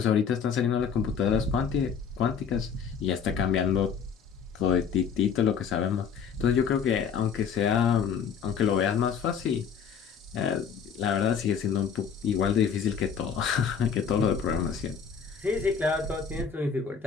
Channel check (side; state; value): right; quieter; 6.9 dB